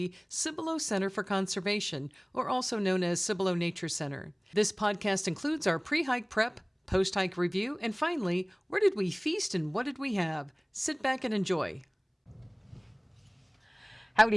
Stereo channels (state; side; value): identical; both; correlation 1.00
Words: Cibolo Center for Conservation, or also known as Cibolo Nature Center. This podcast includes our pre-hike prep, post-hike review, and finally, where did we feast and what did we have? Sit back and enjoy. Howdy,